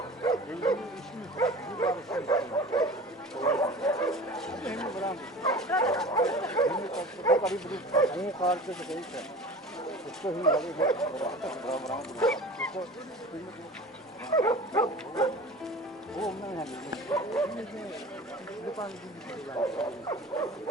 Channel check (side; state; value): both; normal; correlation 0.37